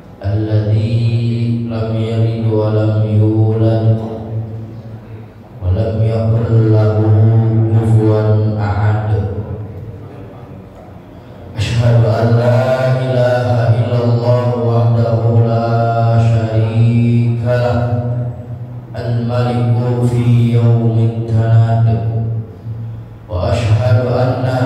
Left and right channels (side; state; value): both; identical; correlation 1.00